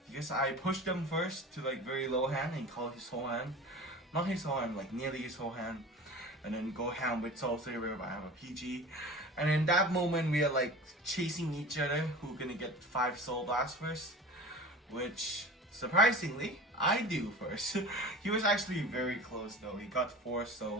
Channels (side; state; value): both; normal; correlation 0.36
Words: because I pushed him first to like very low hand and call his whole hand. Not his whole hand, like nearly his whole hand. And then go ham with Soul Saver, but I have a PG. And in that moment we are like chasing each other, who gonna get 5 Soul Blasts first. Which, surprisingly, I do first. He was actually very close though, he got 4